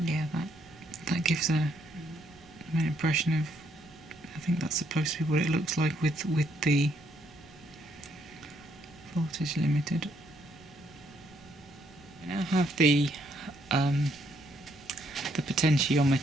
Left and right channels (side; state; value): right; noise; rumble, 26 dB below the sound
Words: Yeah, that gives an impression of, I think that's supposed to be what it looks like with the voltage limited. I now have the